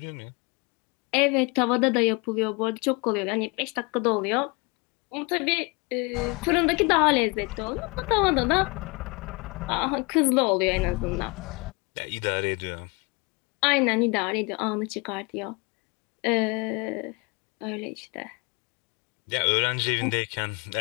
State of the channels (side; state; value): right; quieter; 28.9 dB